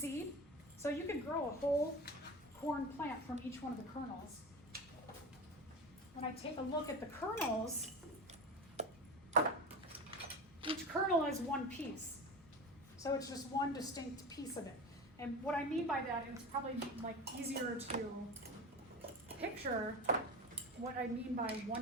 So you could grow a whole corn plant from each one of the kernels. When I take a look at the kernels, each kernel is one piece. So it's just one distinct piece of it. And what I mean by that, and it's probably like easier to picture what I mean by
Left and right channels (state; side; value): normal; both; correlation 0.28